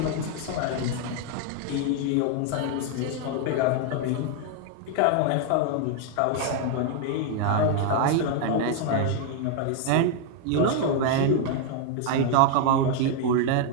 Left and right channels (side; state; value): both; different; correlation 0.00